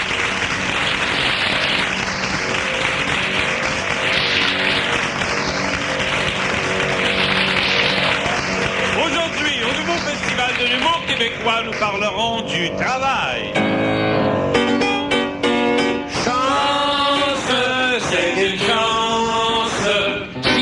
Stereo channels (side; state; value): both; identical; correlation 1.00